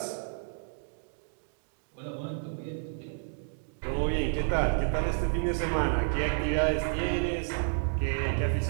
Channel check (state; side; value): silent; left; digital silence